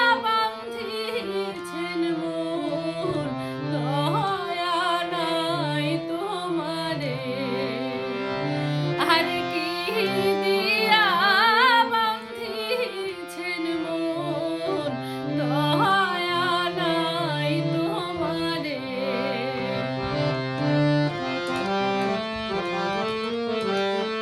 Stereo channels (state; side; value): identical; both; correlation 1.00